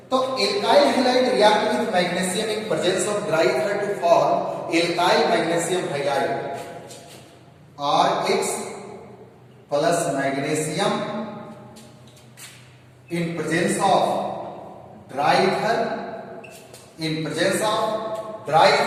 तो alkyl halide react with magnesium in presence of dry ether to form alkyl magnesium halide. Rx plus magnesium in presence of dry ether,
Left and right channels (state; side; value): identical; both; correlation 1.00